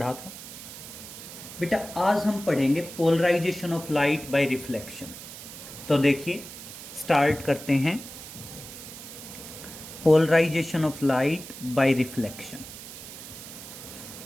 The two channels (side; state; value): right; noise; hiss, 13 dB below the sound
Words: था। बेटा आज हम पढ़ेंगे polarization of light by reflection. तो देखिए स्टार्ट करते हैं। Polarization of light by reflection.